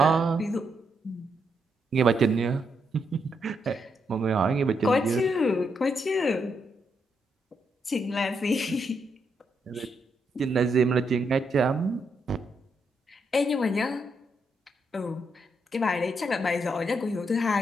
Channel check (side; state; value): both; normal; correlation 0.79